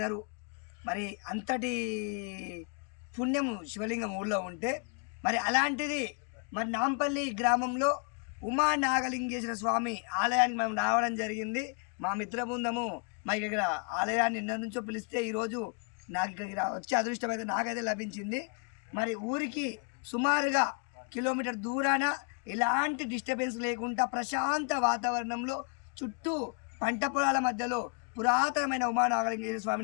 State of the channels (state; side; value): quieter; right; 39.0 dB